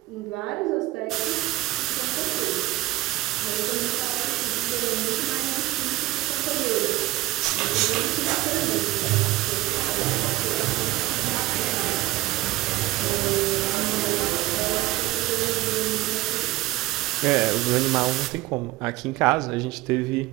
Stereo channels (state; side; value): quieter; left; 18.3 dB